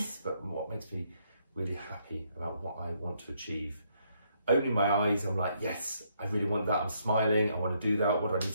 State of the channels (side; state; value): both; inverted; correlation -0.73